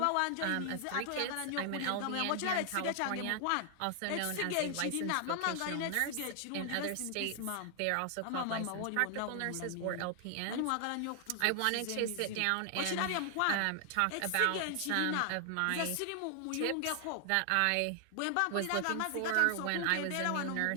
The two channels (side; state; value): both; different; correlation 0.00